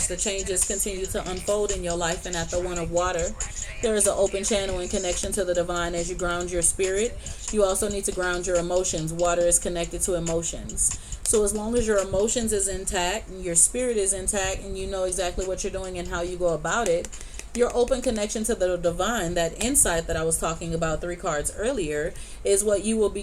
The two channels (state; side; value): identical; both; correlation 1.00